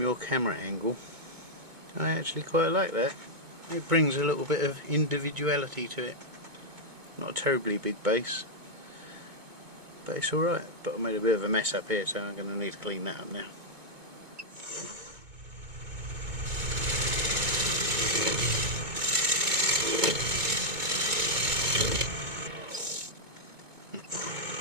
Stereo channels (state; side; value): late; left; 2.2 ms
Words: your camera angle, I actually quite like that. It brings a little bit of individuality to it. Not a terribly big base, but it's alright. But I made a bit of a mess up here, so I'm going to need to clean that up now.